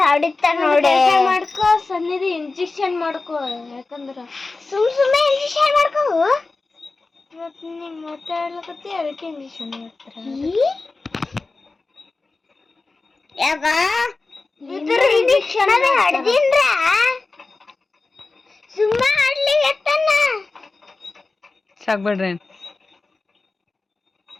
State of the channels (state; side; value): quieter; right; 3.6 dB